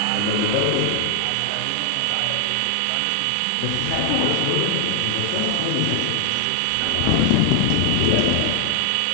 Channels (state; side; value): different; both; correlation 0.00